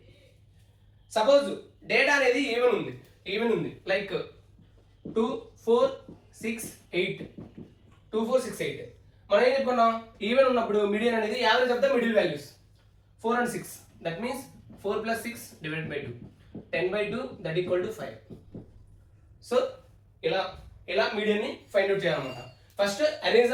సపోజ్ డేటా అనేది ఈవెన్ ఉంది లైక్ 2, 4, 6, 8. మనం ఏం చెప్పుకున్నాం? ఈవెన్ ఉన్నప్పుడు మీడియన్ అనేది average of the middle values 4 and 6. That means 4 + 6 divided by 2, 10/2 that equal to 5. So ఇలా మీడియన్ ని ఫైండ్ అవుట్ చేయాలన్నమాట. First arrange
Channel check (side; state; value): both; identical; correlation 1.00